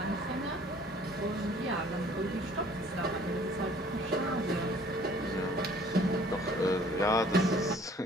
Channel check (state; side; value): normal; both; correlation 0.55